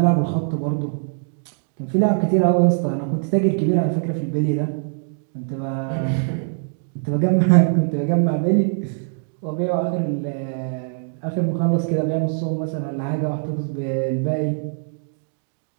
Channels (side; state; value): left; silent; digital silence